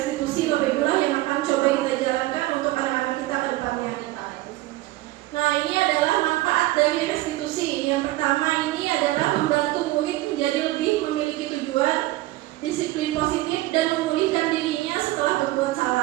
Bapak Ibu yang akan coba kita jalankan untuk anak-anak kita ke depannya. Nah, ini adalah manfaat dari restitusi. Yang pertama ini adalah membantu murid menjadi lebih memiliki tujuan, disiplin positif, dan memulihkan dirinya setelah berbuat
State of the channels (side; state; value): left; quieter; 17.6 dB